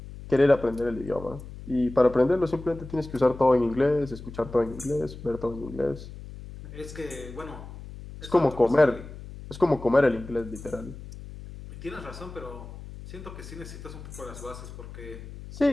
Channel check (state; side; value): noise; left; hum, 13 dB below the sound